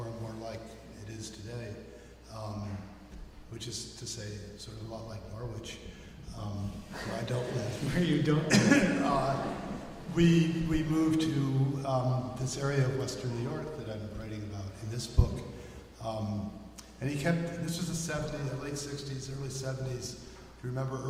and more like it is today, which is to say, sort of a lot like Norwich, where I don't live. Where you don't live. We moved to this area of Western New York that I'm writing about in this book. And he kept, this was the 70s, late 60s, early 70s. Do you remember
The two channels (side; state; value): both; identical; correlation 1.00